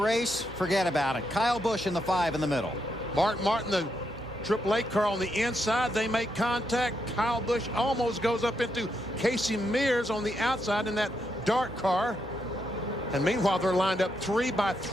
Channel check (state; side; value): normal; both; correlation 0.81